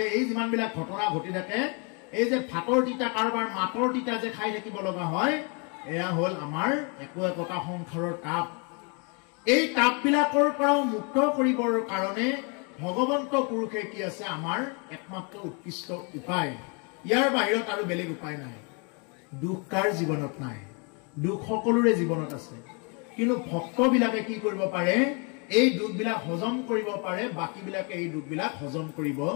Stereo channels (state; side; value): quieter; right; 34.6 dB